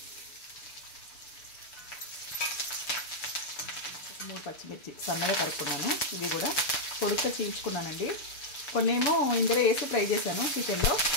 3 పచ్చిమిర్చి సన్నగా తరుక్కున్నాను. ఇవి కూడా పొడుగ్గా చీల్చుకున్నానండి. కొన్నేమో ఇందులో వేసి ఫ్రై చేశాను చికెన్లో.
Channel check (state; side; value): late; right; 6.6 ms